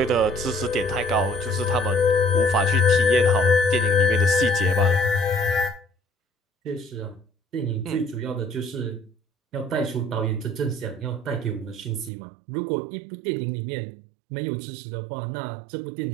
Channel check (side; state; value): left; drops out; at 12.1 s